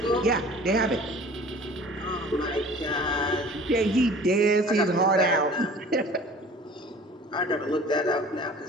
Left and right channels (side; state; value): both; normal; correlation 0.46